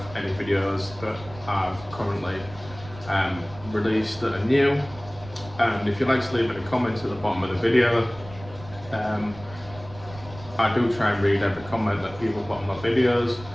any videos that I've currently released that are new. And if you'd like to leave any comments at the bottom of the video, I do try and read every comment that people put on my videos.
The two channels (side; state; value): right; noise; rumble, 17 dB below the sound